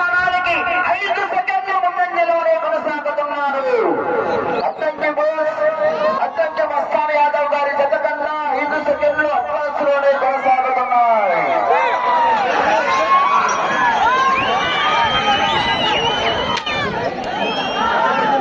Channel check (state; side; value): identical; both; correlation 1.00